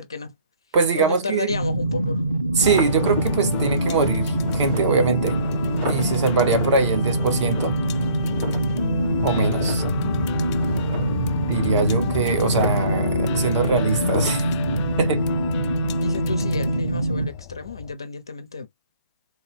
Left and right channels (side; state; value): both; inverted; correlation -0.57